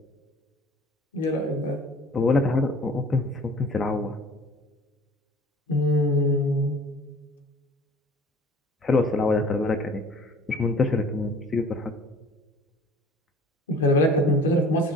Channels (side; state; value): both; normal; correlation 0.48